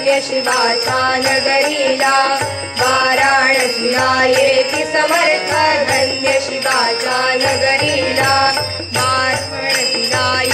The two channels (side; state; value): both; identical; correlation 1.00